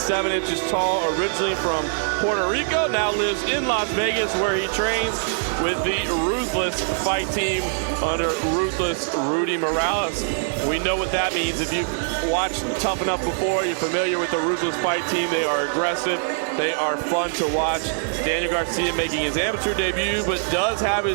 inches tall, originally from Puerto Rico, now lives in Las Vegas where he trains with the Ruthless fight team under Ruthless Rudy Morales. We know what that means. If you've watched Tuff-N-Uff before, you're familiar with the Ruthless fight team. They are aggressive. They are fun to watch. Daniel Garcia making his amateur debut, but does have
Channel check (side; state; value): left; silent; digital silence